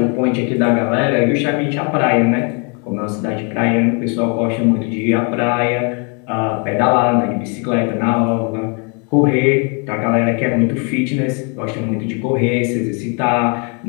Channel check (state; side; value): quieter; right; 35.6 dB